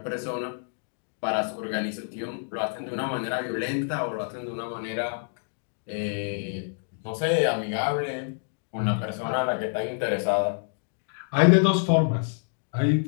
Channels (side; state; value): right; silent; digital silence